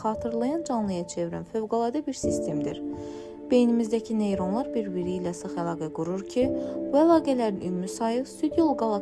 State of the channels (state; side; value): identical; both; correlation 1.00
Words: xatırlayan canlıya çevirən fövqəladə bir sistemdir. Beynimizdəki neyronlar bir-biri ilə sıx əlaqə qurur ki, bu əlaqələrin ümumi sayı Süd yolu